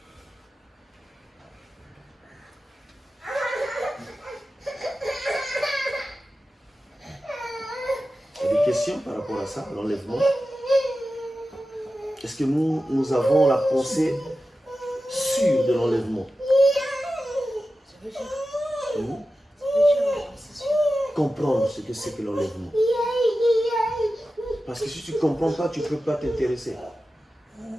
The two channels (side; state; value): both; normal; correlation 0.93